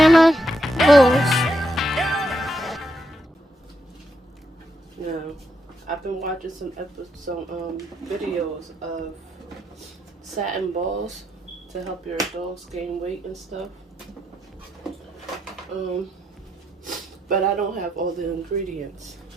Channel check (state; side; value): normal; both; correlation 0.79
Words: rules. Now, I've been watching some videos of satin balls to help your dogs gain weight and stuff. But I don't have all the ingredients,